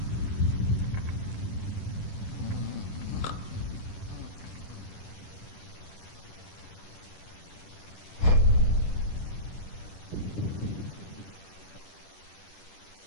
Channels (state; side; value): late; right; 10 ms